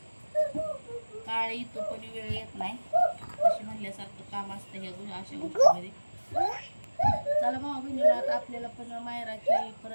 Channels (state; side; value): inverted; both; correlation -1.00